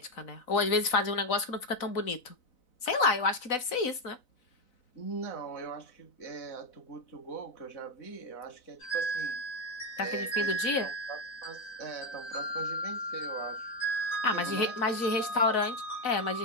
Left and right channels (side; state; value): right; late; 4.0 ms